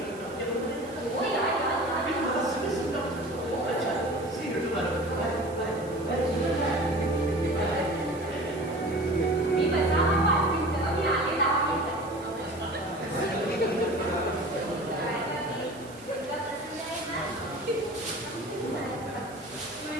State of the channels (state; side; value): noise; right; hiss, 22 dB below the sound